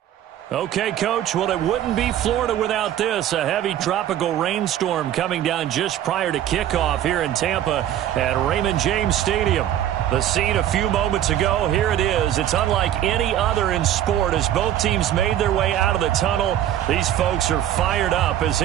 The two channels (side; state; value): left; quieter; 11.5 dB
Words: Okay, Coach, well, it wouldn't be Florida without this. A heavy tropical rainstorm coming down just prior to kickoff here in Tampa at Raymond James Stadium. The scene a few moments ago, here it is. It's unlike any other in sport as both teams made their way out of the tunnel. These folks are fired up as